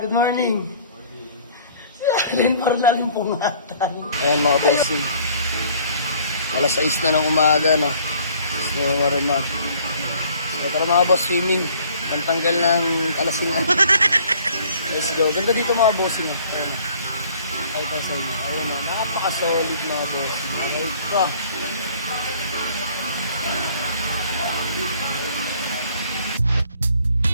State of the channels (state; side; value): inverted; both; correlation -0.56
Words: good morning. Si Allen, parang nalimpungatan. Ayan mga bossing. Alas 6 na ng umaga, no? Gusto mo marimar. Tara mga boss, swimming. Pantanggal ng kalasingan. Let's go. Ganda dito mga bossing, no? Ayan, no? Ay, sa inyo. Ayun, no? Napaka-solid mga bossing. Ay, ka.